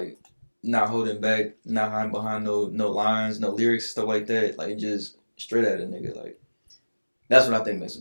not holding back, not hiding behind no lines, no lyrics, stuff like that. Like just straight at a nigga. Like that's what I think makes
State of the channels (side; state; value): both; inverted; correlation -1.00